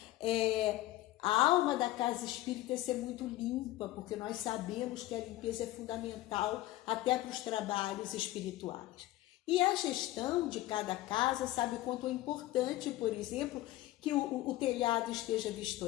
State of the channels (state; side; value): quieter; right; 16.2 dB